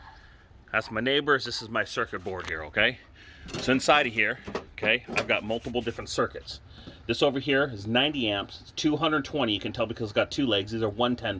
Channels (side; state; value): both; identical; correlation 1.00